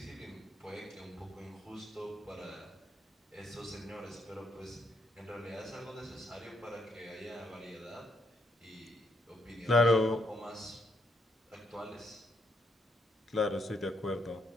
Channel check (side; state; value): both; normal; correlation 0.74